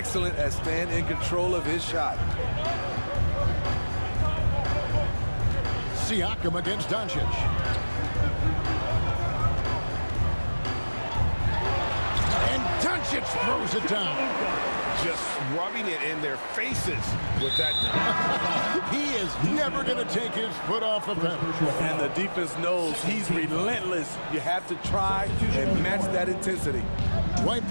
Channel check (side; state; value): both; inverted; correlation -1.00